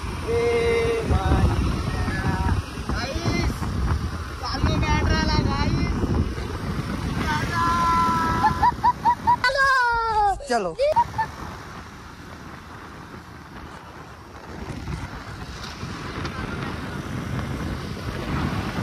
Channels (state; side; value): identical; both; correlation 1.00